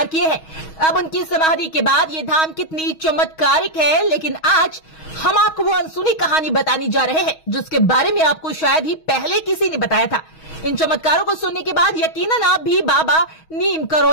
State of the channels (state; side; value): late; right; 6.3 ms